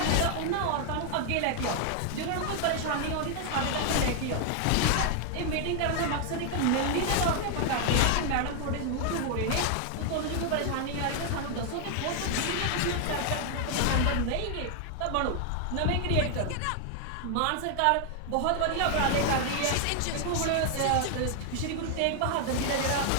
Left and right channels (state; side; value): different; both; correlation 0.00